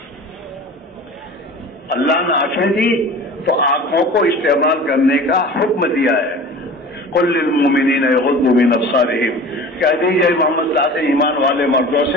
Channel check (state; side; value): normal; both; correlation 0.39